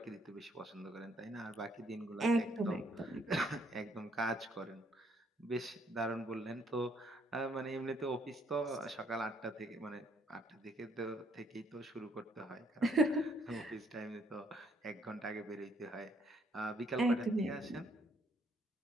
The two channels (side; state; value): both; normal; correlation 0.68